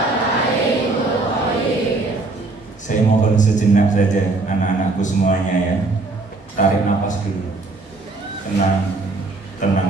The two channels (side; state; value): left; quieter; 3.4 dB